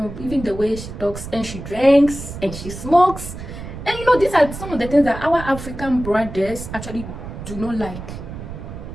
even the way she talks, and she drinks and she smokes, and you know, these are some of the things that our African brothers actually do not like,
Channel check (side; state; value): right; noise; rumble, 10 dB below the sound